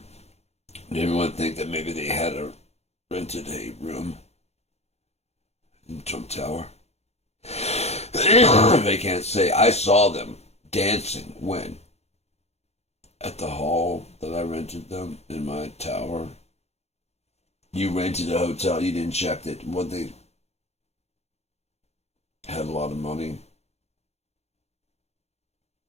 Did everyone think that maybe they had rented a room in Trump Tower? They can't say, I saw them dancing when? At the hall that I rented them in my tower. You rented a hotel, you didn't check that what they had a lot of money.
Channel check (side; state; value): right; late; 0.31 ms